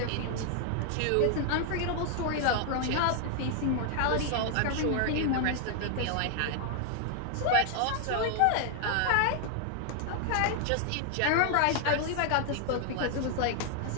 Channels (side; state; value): both; different; correlation 0.00